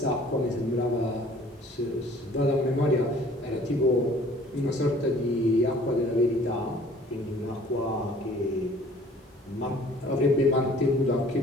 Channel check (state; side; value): normal; both; correlation 0.53